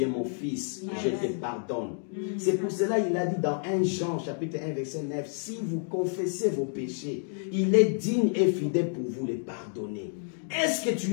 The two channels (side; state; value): right; silent; 58 dB below the other